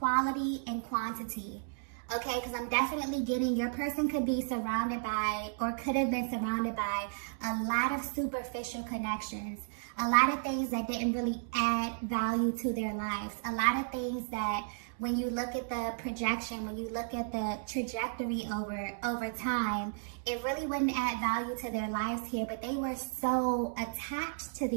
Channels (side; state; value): left; silent; digital silence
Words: and quantity. Okay, because I'm definitely getting your person could be surrounded by, or could have been surrounded by, a lot of superficial connections. A lot of things that didn't really add value to their lives. A lot of things that when you look at the projection, when you look at the trajectory over time, it really wouldn't add value to their lives here, but they were so attached to